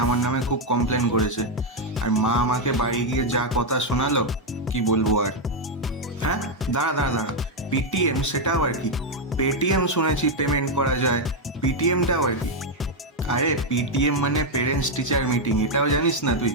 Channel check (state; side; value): normal; both; correlation 0.02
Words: আমার নামে খুব কমপ্লেন করেছে। আর মা আমাকে বাড়ি গিয়ে যা কথা শোনালো, কি বলবো আর। হ্যাঁ, দাঁড়া দাঁড়া দাঁড়া, পিটিএম সেটাও আর কি? পেটিএম শুনেছি পেমেন্ট করা যায়, পিটিএমটাও আর কি? আরে পিটিএম মানে পেরেন্টস টিচার মিটিং, এটাও জানিস না তুই?